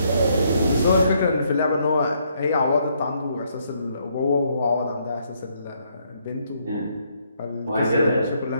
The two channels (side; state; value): both; inverted; correlation -0.72